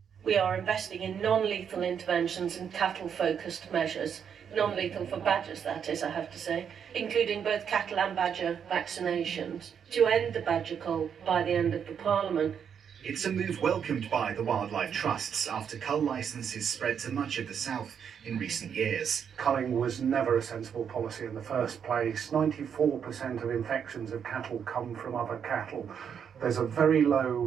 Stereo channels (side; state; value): left; quieter; 7.7 dB